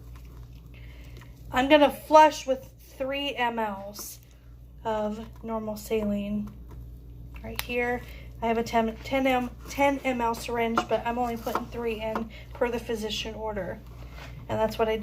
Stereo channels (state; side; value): identical; both; correlation 1.00